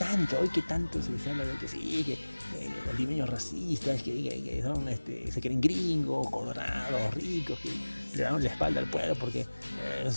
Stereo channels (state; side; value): inverted; both; correlation -1.00